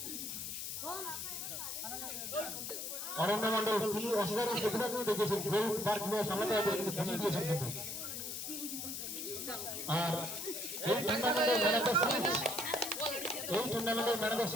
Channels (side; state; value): left; noise; hiss, 5 dB below the sound